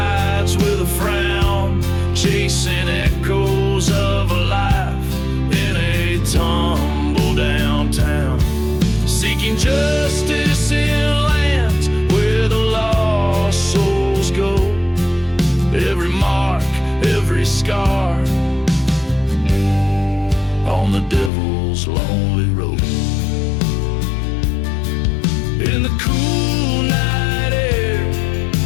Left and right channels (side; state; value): right; drops out; at 21.3 s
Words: with a frown, chasing echoes of a life in a tumble downtown, seeking justice in lands where the lost souls go. Every mark, every scar, on the devil's lonely road. In the cool night air,